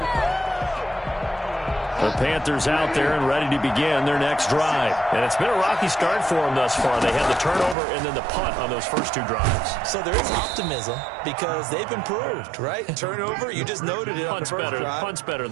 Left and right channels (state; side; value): drops out; left; at 7.8 s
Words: The Panthers out there and ready to begin their next drive. And it's been a rocky start for them thus far. They had the turnover and then the punt on those first 2 drives. So there is optimism because they've improved, right? Turnover, you just noted it on the first drive. Punt's better